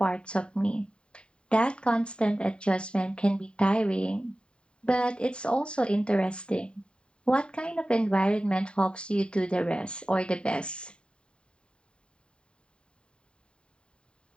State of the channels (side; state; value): right; late; 0.052 ms